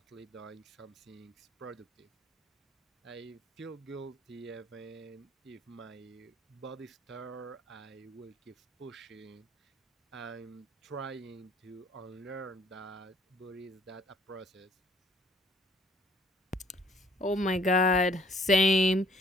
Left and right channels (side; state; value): both; normal; correlation 0.60